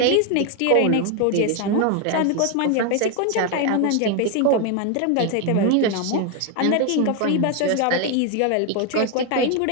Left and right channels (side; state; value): both; different; correlation 0.01